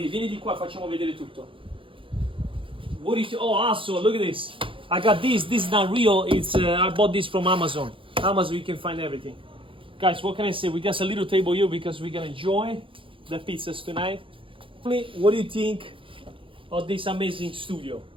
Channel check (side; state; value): left; late; 0.25 ms